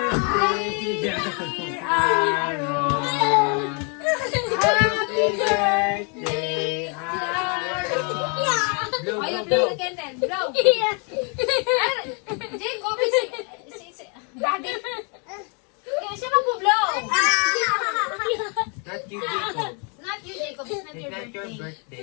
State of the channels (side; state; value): right; quieter; 35.6 dB